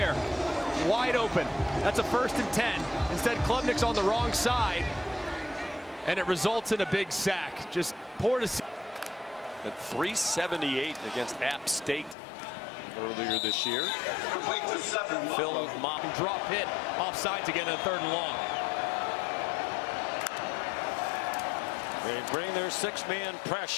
Wide open. That's a 1st and 10. Instead, Klubnik's on the wrong side, and it results in a big sack. Just poor to see. At 378 against App State earlier this year. Phil Mott. Drop hit off sides again in 3rd and long. They bring their 6-man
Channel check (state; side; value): drops out; right; at 12.2 s